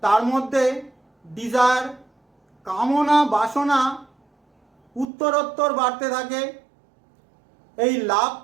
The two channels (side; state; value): left; drops out; at 5.1 s